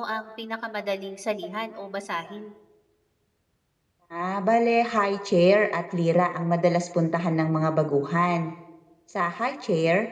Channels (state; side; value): identical; both; correlation 1.00